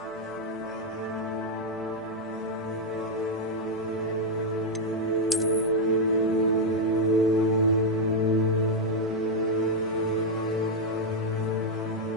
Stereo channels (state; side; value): normal; both; correlation 0.00